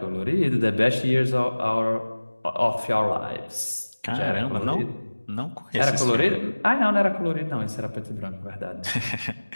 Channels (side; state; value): both; inverted; correlation -1.00